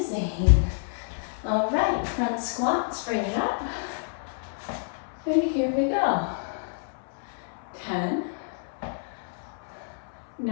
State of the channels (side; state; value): right; silent; 59 dB below the other